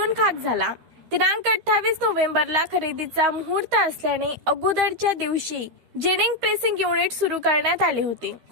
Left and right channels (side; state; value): left; late; 13 ms